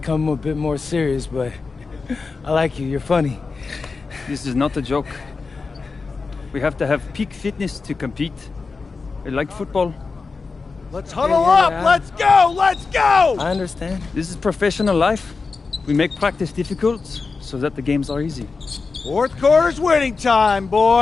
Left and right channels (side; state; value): right; quieter; 4.4 dB